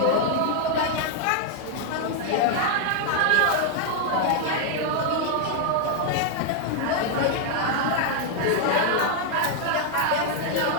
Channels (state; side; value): different; both; correlation 0.00